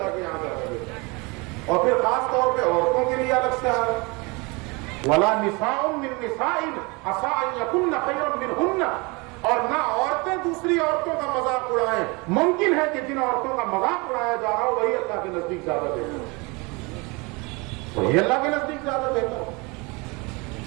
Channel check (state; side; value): quieter; left; 27.5 dB